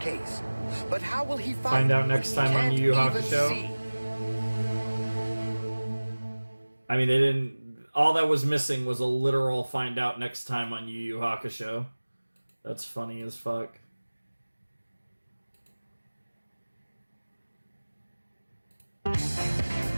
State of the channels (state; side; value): inverted; both; correlation -1.00